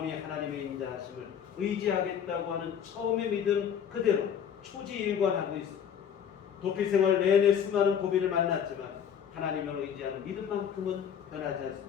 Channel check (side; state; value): right; quieter; 8.2 dB